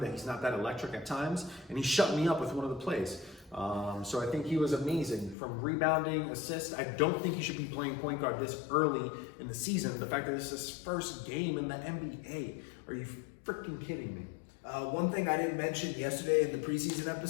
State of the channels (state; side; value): drops out; right; at 5.4 s